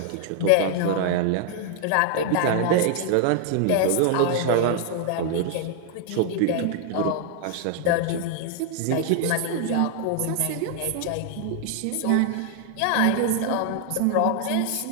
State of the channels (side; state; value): both; different; correlation 0.00